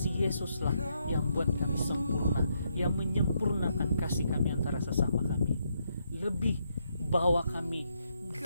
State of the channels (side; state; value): both; inverted; correlation -0.77